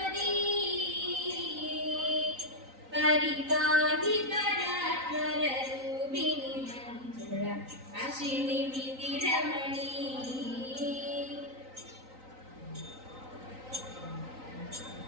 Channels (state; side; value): late; left; 3.9 ms